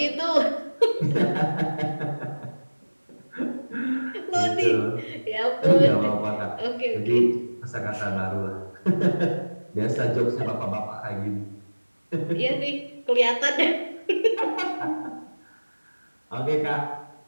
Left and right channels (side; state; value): both; inverted; correlation -1.00